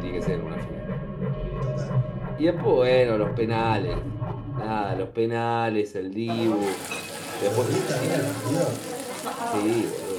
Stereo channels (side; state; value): both; identical; correlation 1.00